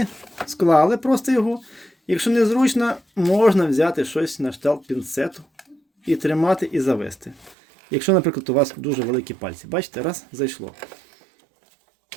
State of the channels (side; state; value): left; drops out; at 7.6 s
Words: склали просто його. Якщо незручно, можна взяти щось на кшталт пінцету і тримати і завести. Якщо, наприклад, у вас дуже великі пальці. Бачите, раз, зайшло.